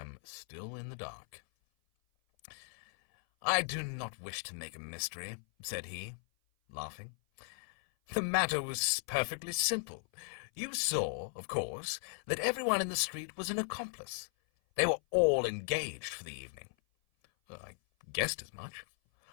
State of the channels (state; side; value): silent; right; 53 dB below the other